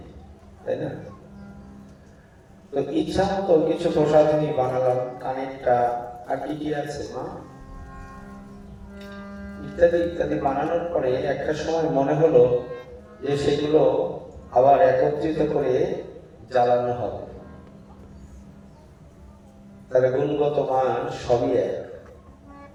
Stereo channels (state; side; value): identical; both; correlation 1.00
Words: তাই না? তো ইচ্ছা মতো কিছু প্রসাধনী বানালাম, কানেরটা আর কি কি আছে মা ইত্যাদি ইত্যাদি বানানোর পরে একটা সময় মনে হলো যে সেগুলো আবার একত্রিত করে জ্বালানো হবে। তার গুণগত মান সবই এক,